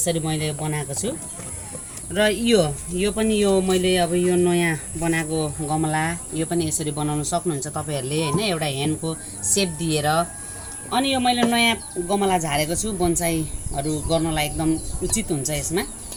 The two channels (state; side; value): identical; both; correlation 1.00